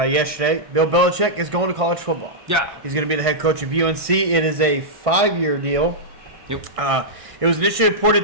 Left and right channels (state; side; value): late; left; 1.6 ms